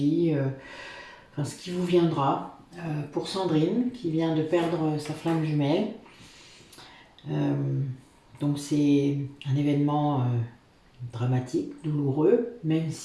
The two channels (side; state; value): both; identical; correlation 1.00